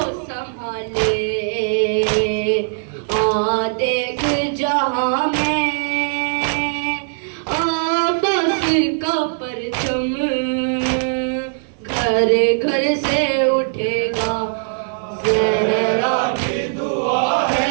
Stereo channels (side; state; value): left; silent; digital silence